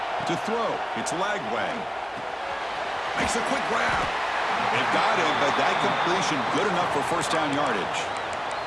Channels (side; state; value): both; identical; correlation 1.00